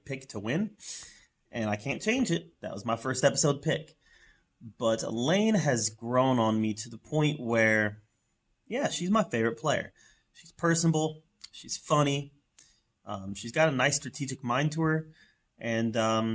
pick to win, and I can't change it. That was my first episode pick. But Elaine has grown on me to the point where, yeah, she's my favorite player. She's personable. She's funny. She's got a nice strategic mind to her,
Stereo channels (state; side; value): identical; both; correlation 1.00